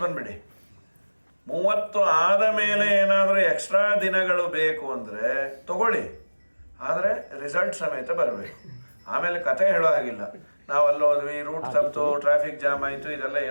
ಬಂದ್ಬಿಡಿ. 30 ಆದ ಮೇಲೆ ಏನಾದರೂ ಎಕ್ಸ್ಟ್ರಾ ದಿನಗಳು ಬೇಕು ಅಂದರೆ ತಗೊಳ್ಳಿ, ಆದರೆ ರಿಸಲ್ಟ್ ಸಮೇತ ಬರಬೇಕು. ಆಮೇಲೆ ಕತೆ ಹೇಳೋ ಹಾಗಿಲ್ಲ, ನಾವು ಅಲ್ಲೋದ್ವಿ, ರೂಟ್ ತಪ್ಪಿತು, ಟ್ರಾಫಿಕ್ ಜಾಮ್ ಆಯಿತು, ಇದೆಲ್ಲ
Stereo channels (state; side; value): inverted; both; correlation -1.00